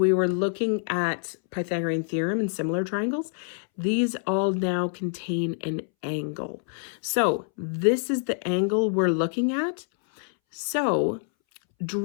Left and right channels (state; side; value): silent; right; 61 dB below the other